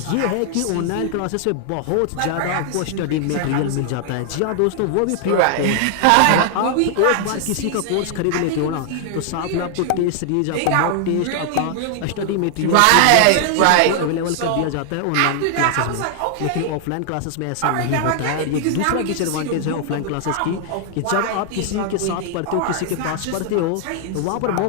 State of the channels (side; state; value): both; different; correlation 0.00